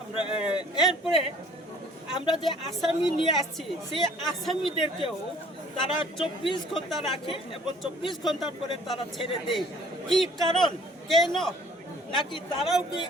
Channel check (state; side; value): normal; both; correlation 0.54